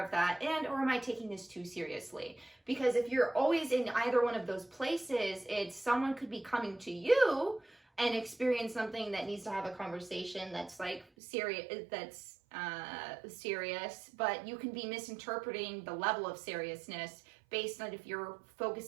of that, or am I taking this too seriously? Because if you're always in either one of those places, someone could be coming to you and experience something that needs to have a conversation that's like serious, but you can be misinterpreting the level of seriousness based on if you're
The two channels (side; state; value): left; drops out; at 11.1 s